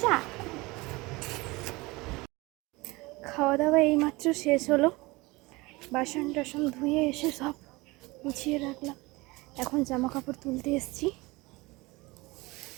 খাওয়া দাওয়া এইমাত্র শেষ হলো, বাসন টাসন ধুয়ে এসে সব গুছিয়ে রাখলাম। এখন জামা কাপড় তুলতে এসেছি।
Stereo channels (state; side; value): quieter; left; 22.9 dB